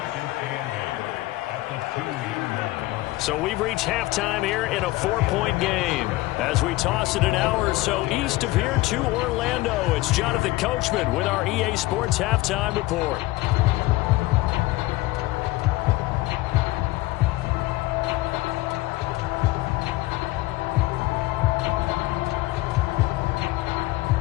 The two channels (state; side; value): quieter; right; 19.0 dB